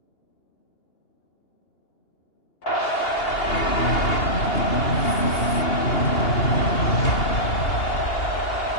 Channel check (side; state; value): right; late; 2.8 ms